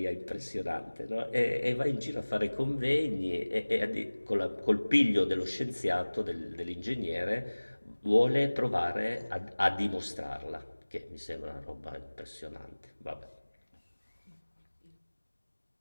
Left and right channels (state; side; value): inverted; both; correlation -1.00